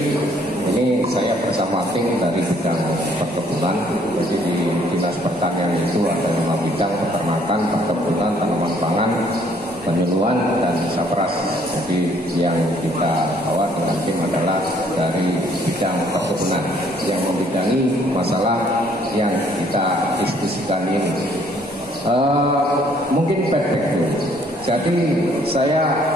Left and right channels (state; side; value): normal; both; correlation 0.63